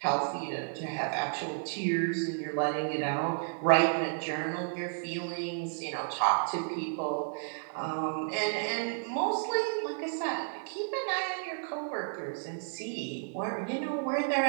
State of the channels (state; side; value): silent; left; 56 dB below the other